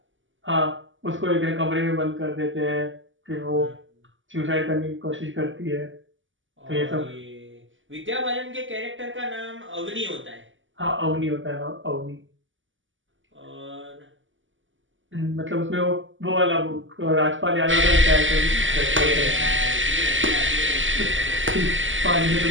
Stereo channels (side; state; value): left; late; 0.56 ms